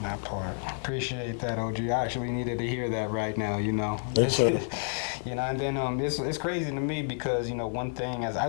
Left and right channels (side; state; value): right; silent; 58 dB below the other